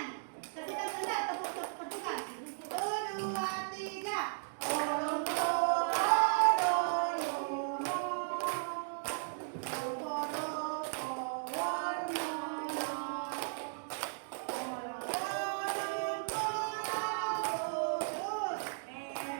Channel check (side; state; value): left; silent; digital silence